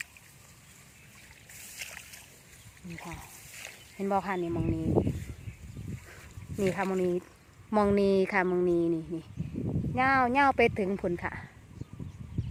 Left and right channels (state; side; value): identical; both; correlation 1.00